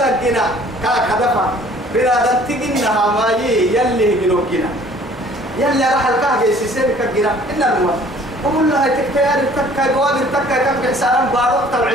لقينا كهدفا بنا نتجنها ما يلي جنو كنا يلي راح الكهجة سيسير كجنا إن الموت وقول لها تكتير تكا جواب تكا كم حسارا بارو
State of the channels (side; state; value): both; normal; correlation 0.53